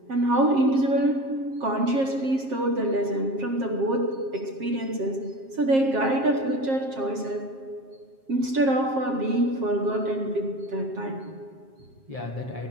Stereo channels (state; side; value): late; left; 7.5 ms